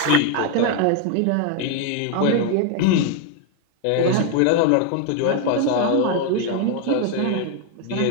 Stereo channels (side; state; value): both; different; correlation 0.01